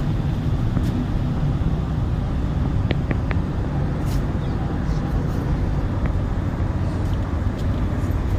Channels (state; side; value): identical; both; correlation 1.00